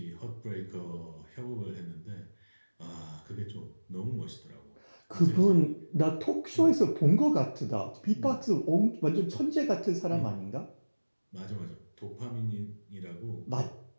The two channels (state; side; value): inverted; both; correlation -1.00